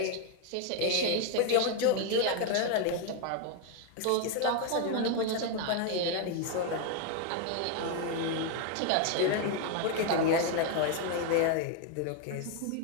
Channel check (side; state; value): both; different; correlation 0.01